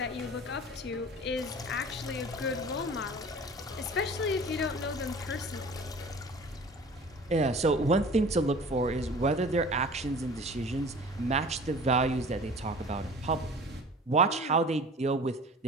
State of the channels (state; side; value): normal; both; correlation 0.42